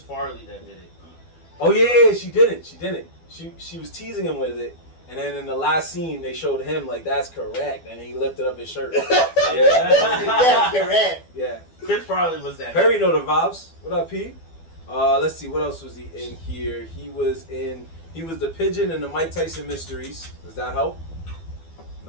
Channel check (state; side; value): late; right; 12 ms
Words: that did it. Oh yeah, she didn't. She was teasing him with it, and then in the last scene they showed him like that's correct, and then he lifted up his shirt. Yeah, correct. Yeah. Chris Farley was that. Perry know the vibes. What up, P? Let's see. What else was he in here? He was the pigeon in the Mike Tyson Mysteries. Does that help?